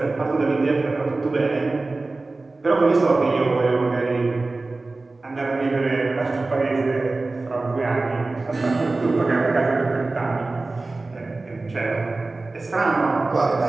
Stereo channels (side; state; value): left; quieter; 3.3 dB